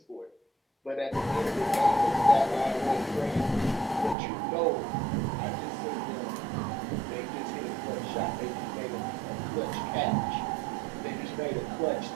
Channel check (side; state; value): left; drops out; at 4.2 s